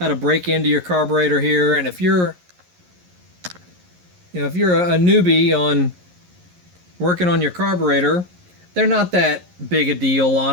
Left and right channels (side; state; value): left; late; 11 ms